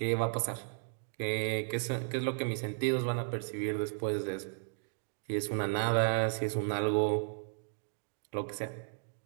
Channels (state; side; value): silent; left; 55 dB below the other